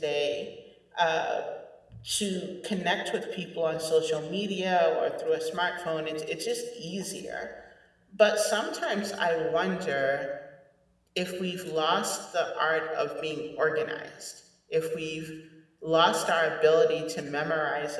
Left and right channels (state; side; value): identical; both; correlation 1.00